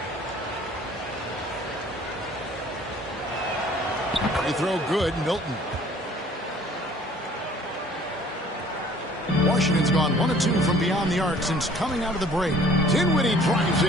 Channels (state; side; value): normal; both; correlation 0.54